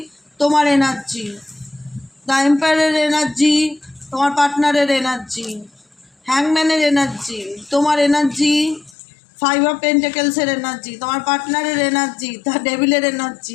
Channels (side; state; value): right; drops out; at 9.0 s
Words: তোমার এনার্জি। দ্য এম্পায়ারের এনার্জি, তোমার পার্টনারের এনার্জি। হ্যাংম্যানের এনার্জি, তোমার এনার্জি। 5 অফ পেন্টাকেলসের এনার্জি, তোমার পার্টনারের এনার্জি। দ্য ডেভিলের